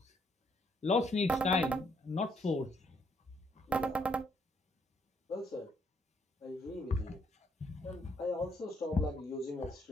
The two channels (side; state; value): both; normal; correlation 0.71